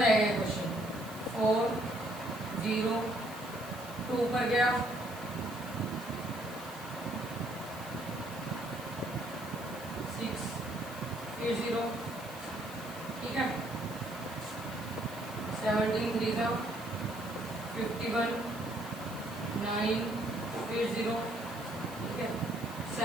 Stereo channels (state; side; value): noise; right; hiss, 17 dB below the sound